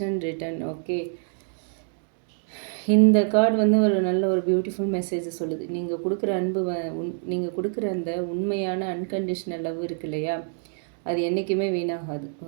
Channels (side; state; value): left; silent; 61 dB below the other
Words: return. Okay, இந்த கார்டு வந்து ஒரு நல்ல ஒரு பியூட்டிஃபுல் மெசேஜை சொல்லுது. நீங்கள் கொடுக்குற அன்பு நீங்கள் கொடுக்குற அந்த உண்மையான அன்கண்டிஷனல் லவ் இருக்கு இல்லையா, அது என்றைக்குமே வீணாகாது.